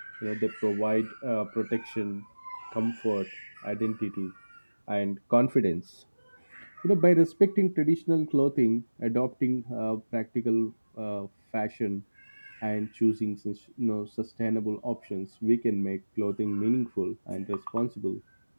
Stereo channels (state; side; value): inverted; both; correlation -1.00